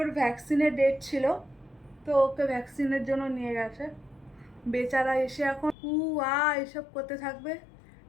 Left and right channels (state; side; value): drops out; right; at 5.8 s